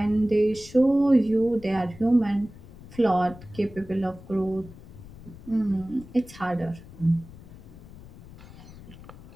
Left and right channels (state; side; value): noise; left; rumble, 18 dB below the sound